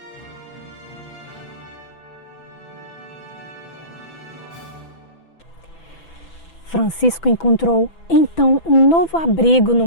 Francisco encontrou então um novo abrigo no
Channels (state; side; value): late; right; 6.0 ms